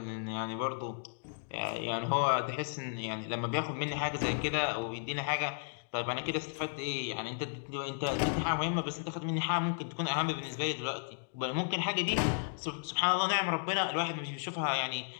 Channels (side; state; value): right; silent; digital silence